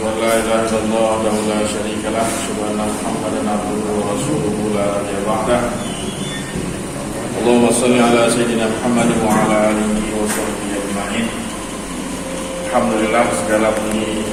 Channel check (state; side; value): identical; both; correlation 1.00